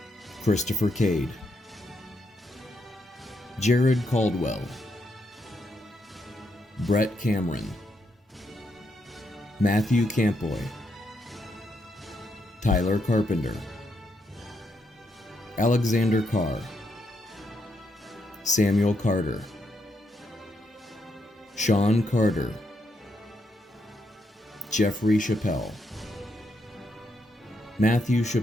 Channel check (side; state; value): both; normal; correlation 0.79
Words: Christopher Cade, Jared Caldwell, Brett Cameron, Matthew Campoy, Tyler Carpenter, Alexander Carr, Samuel Carter, Sean Carter, Jeffrey Chappelle, Matthew